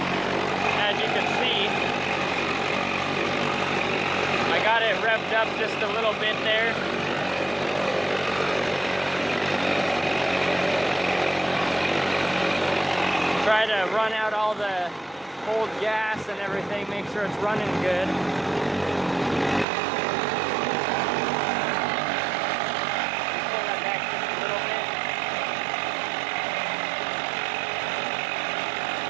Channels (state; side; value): drops out; left; at 19.7 s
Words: as you can see. I got it revved up just a little bit there. Try to run out all the old gas and everything, make sure it's running good. Pull that back just a little bit.